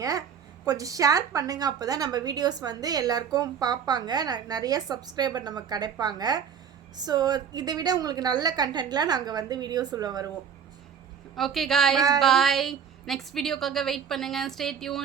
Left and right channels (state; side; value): quieter; left; 7.5 dB